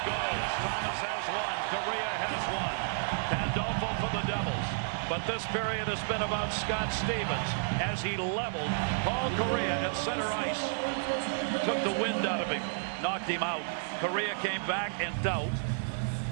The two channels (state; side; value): silent; left; 57 dB below the other